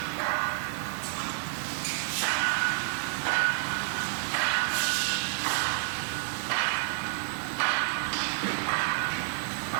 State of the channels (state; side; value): silent; left; digital silence